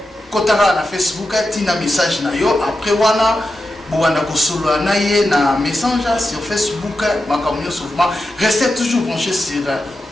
kotaka na Facebook tina message na yo après wana bowanda kosolola na ye na messenger sur Facebook makambo nyonso format restez toujours branchés sur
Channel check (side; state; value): both; normal; correlation 0.89